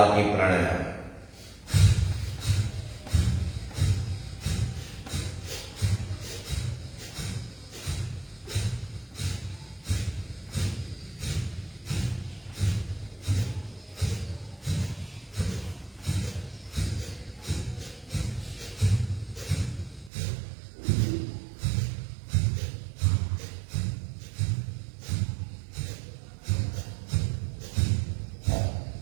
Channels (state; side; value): drops out; left; at 20.1 s